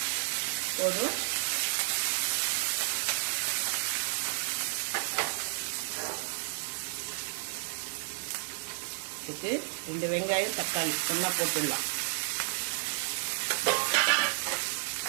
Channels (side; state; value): left; silent; 57 dB below the other